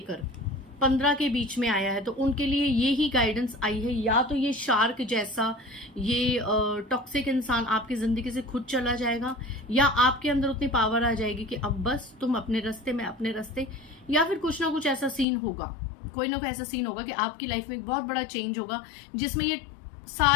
15 के बीच में आया है तो उनके लिए ये ही गाइडेंस आई है, या तो ये शार्क जैसा ये टॉक्सिक इंसान आपकी जिंदगी से खुद चला जाएगा, या आपके अंदर उतनी पावर आ जाएगी कि अब बस तुम अपने रास्ते में अपने रास्ते, या फिर कुछ ना कुछ ऐसा सीन होगा, कोई ना कोई ऐसा सीन होगा कि आपकी लाइफ में एक बहुत बड़ा चेंज होगा जिसमें ये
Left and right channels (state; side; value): drops out; right; at 15.2 s